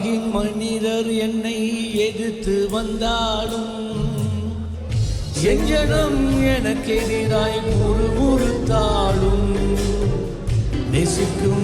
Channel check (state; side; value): identical; both; correlation 1.00